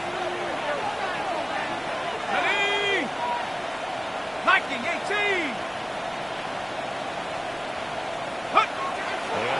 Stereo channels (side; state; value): both; identical; correlation 1.00